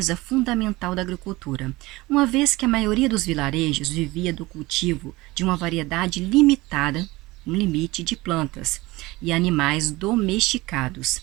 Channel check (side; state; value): left; quieter; 20.7 dB